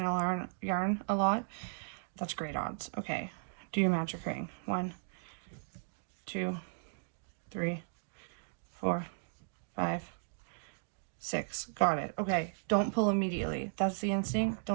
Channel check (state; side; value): silent; left; digital silence